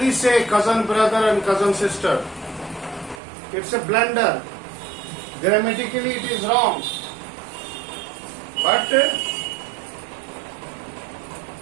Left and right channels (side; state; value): left; drops out; at 3.2 s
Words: say cousin, brother and cousin, sister. It's a blunder. Grammatically it is wrong. But